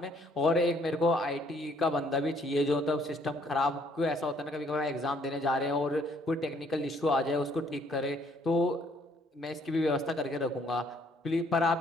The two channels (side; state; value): both; normal; correlation 0.65